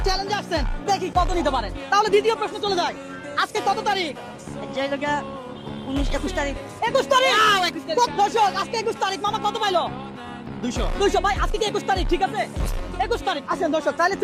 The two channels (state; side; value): identical; both; correlation 1.00